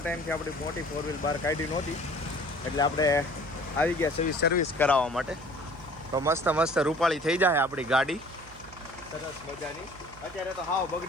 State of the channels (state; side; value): noise; right; hum, 20 dB below the sound